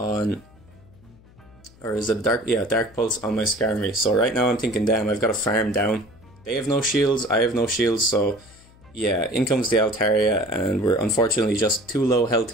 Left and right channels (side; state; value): left; noise; hum, 26 dB below the sound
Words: Or is it a Dark Pulse on my Skarmory. So right now I'm thinking, damn, I've got to farm down. They have no shields, I have no shields, so yeah, in comes the Altaria, and we're unfortunately just too low health